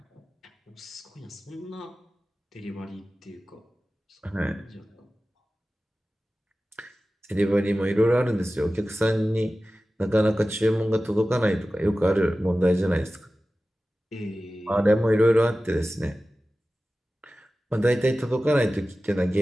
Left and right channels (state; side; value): normal; both; correlation 0.96